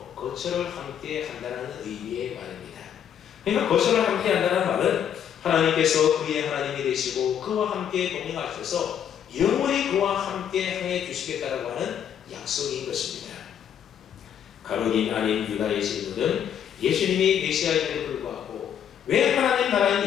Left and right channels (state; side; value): quieter; right; 9.1 dB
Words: 거처를 함께 한다는 의미의 말입니다. 그러니까 거처를 함께 한다는 말은 하나님께서 그의 하나님이 되시고 그와 함께 동행하셔서 영원히 그와 함께 행해 주시겠다라고 하는 약속인 것입니다. 가룟인 아닌 유다의 질문은 예수님이 메시아임에도 불구하고 왜 하나님